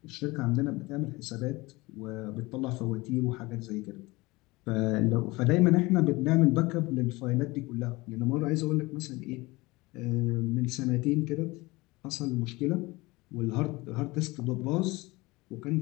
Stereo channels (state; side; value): quieter; right; 22.4 dB